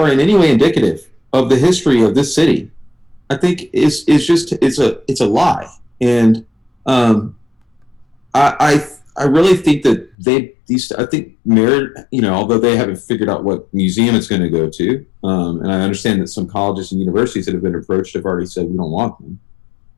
in any way indicative of the history of this city, I think is just it's a lie. And um, I really think that I think merit, although they haven't figured out what museum it's going to go to, and I understand that some colleges and universities that have been approached have already said we don't want them.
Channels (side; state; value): right; drops out; at 10.2 s